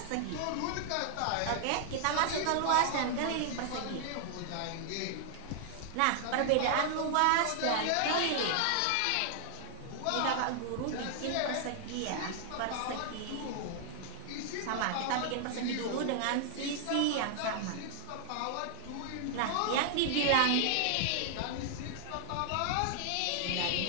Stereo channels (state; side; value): different; both; correlation 0.00